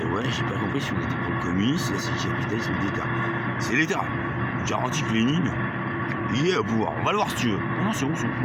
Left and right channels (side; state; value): both; identical; correlation 1.00